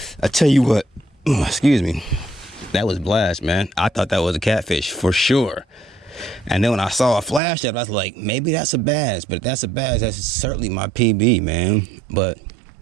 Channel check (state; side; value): drops out; left; at 7.4 s